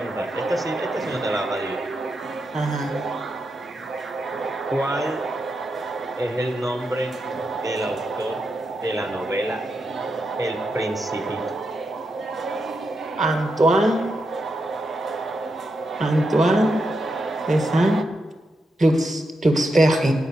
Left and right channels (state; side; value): normal; both; correlation 0.85